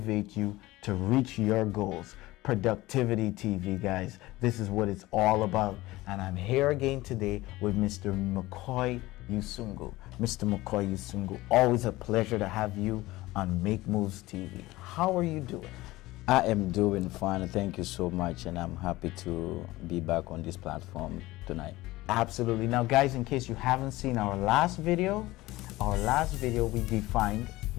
you to reach your goals. Productivity TV, guys. This is what it's all about. And I'm here again today with Mr. McCoy Yusungu. Mr. McCoy Yusungu, always a pleasure to have you on Make Moves TV. How are you doing? I am doing fine. Thank you so much, and I'm happy to be back on this platform tonight. Absolutely. Now, guys, in case you haven't seen our last video we defined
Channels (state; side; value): quieter; right; 18.6 dB